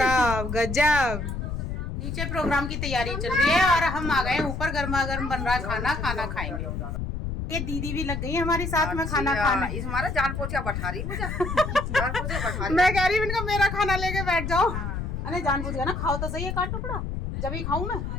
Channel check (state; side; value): noise; left; rumble, 4 dB below the sound